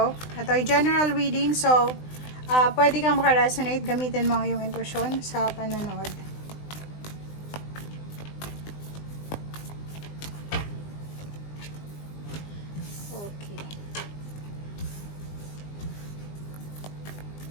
Ito ay general reading, so pwede kang makaresonate, gamitin mo yung intuition sa panonood. Okay.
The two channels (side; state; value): right; late; 20 ms